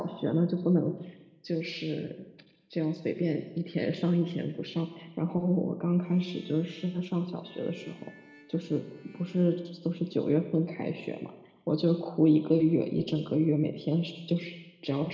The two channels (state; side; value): identical; both; correlation 1.00